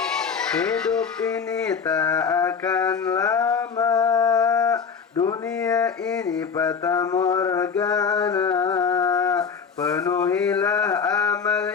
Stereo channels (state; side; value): quieter; right; 6.1 dB